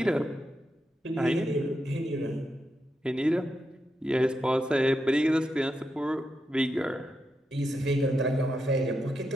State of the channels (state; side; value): normal; both; correlation 0.85